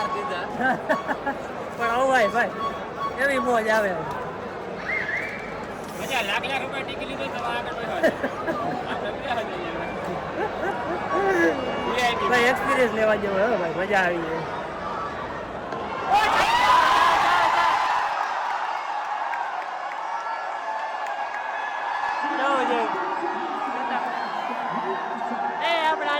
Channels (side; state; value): both; identical; correlation 1.00